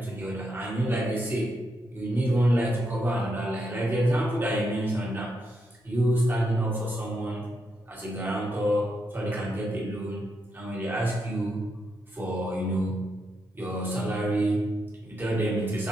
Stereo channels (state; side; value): normal; both; correlation 0.82